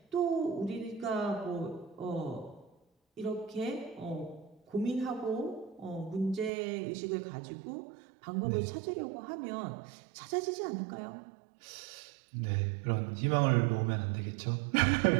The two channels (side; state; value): left; drops out; at 6.5 s